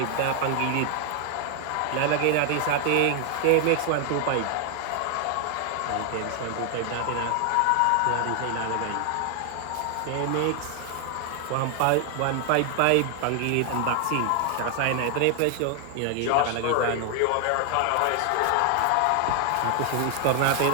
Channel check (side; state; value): both; different; correlation 0.00